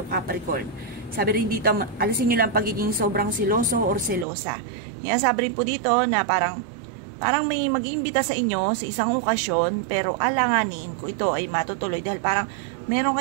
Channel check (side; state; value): left; drops out; at 4.2 s